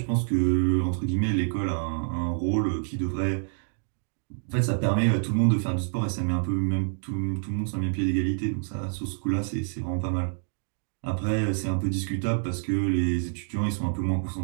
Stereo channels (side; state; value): left; silent; digital silence